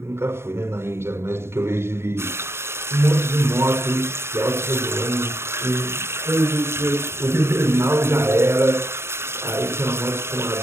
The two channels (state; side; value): late; left; 0.12 ms